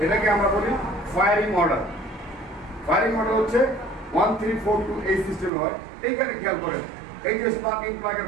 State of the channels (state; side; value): drops out; left; at 5.5 s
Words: এটাকে আমরা বলি ফায়ারিং অর্ডার। ফায়ারিং অর্ডার হচ্ছে 1 3 4 2 এই সিস্টেমে হয়। এইখানে খেয়াল করেন, এই যে স্পার্কিং প্লাগের